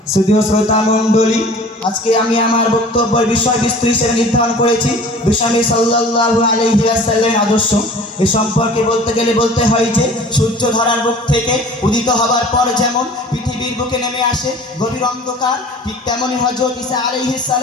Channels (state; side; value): normal; both; correlation 0.45